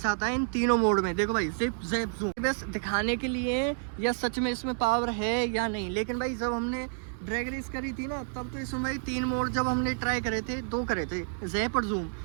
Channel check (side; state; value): left; silent; digital silence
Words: आता है इन तीनों मोड में। देखो भाई जिप जैप जूम बस दिखाने के लिए या सच में इसमें पावर है या नहीं। लेकिन भाई जब हमने ड्रैग रेस करी थी ना, तब तो इसमें भाई 3 मोड जब हमने ट्राई करे थे, 2 करे थे, जैप और जूम,